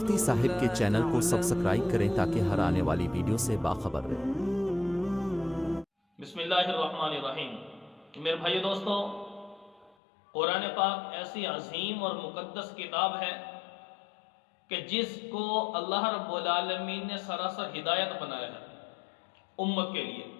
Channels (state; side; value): drops out; right; at 10.0 s